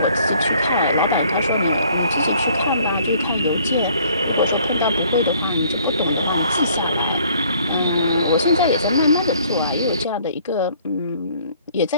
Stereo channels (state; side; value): inverted; both; correlation -0.59